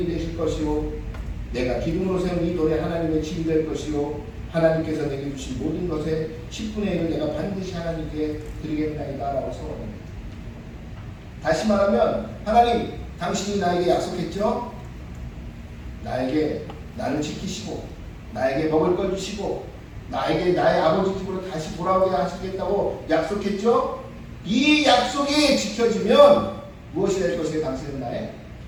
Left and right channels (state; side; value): identical; both; correlation 1.00